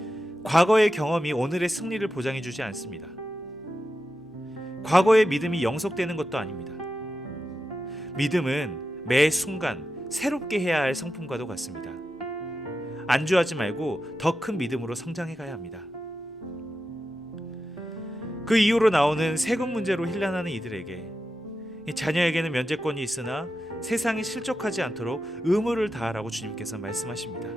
과거의 경험이 오늘의 승리를 보장해주지 않습니다. 과거의 믿음이 영속되는 것도 아닙니다. 믿음은 매 순간 새롭게 해야 할 성품과도 같습니다. 안주하지 말고 더 큰 믿음으로 성장해 가야 합니다. 그 이후로 나오는 세금 문제로 혼란하는 이들에게 자녀에게는 면제권이 있으나 세상에 실족하지 않도록 의무를 다하라고 주님께서 말씀하십니다.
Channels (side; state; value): both; normal; correlation 0.90